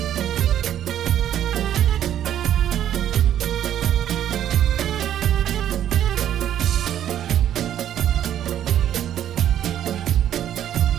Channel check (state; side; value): quieter; left; 10.8 dB